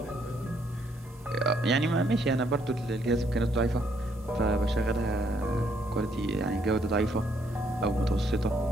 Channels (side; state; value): both; normal; correlation 0.71